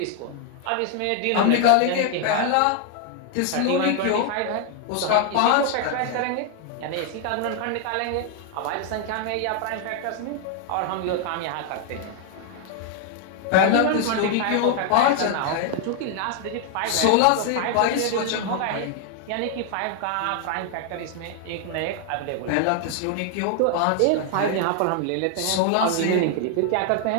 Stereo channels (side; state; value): both; different; correlation 0.00